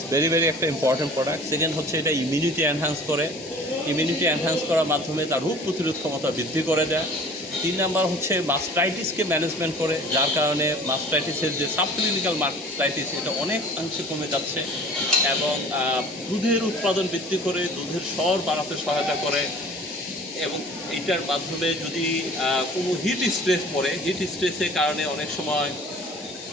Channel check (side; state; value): both; normal; correlation 0.46